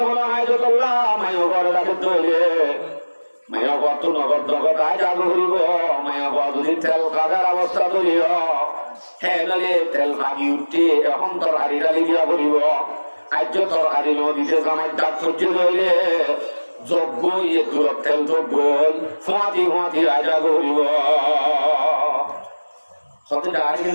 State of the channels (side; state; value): both; inverted; correlation -1.00